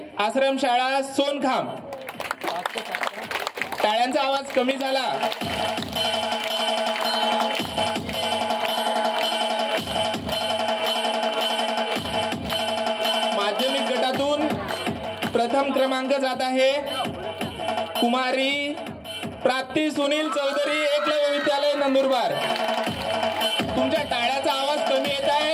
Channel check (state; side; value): identical; both; correlation 1.00